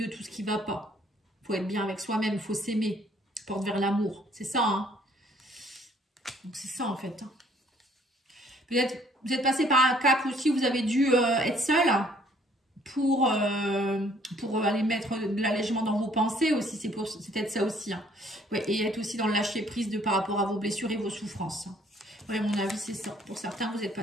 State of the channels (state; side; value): normal; both; correlation 0.61